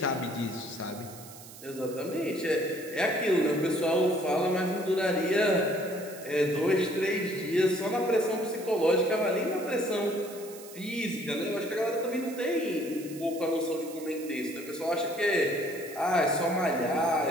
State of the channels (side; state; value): right; noise; hiss, 17 dB below the sound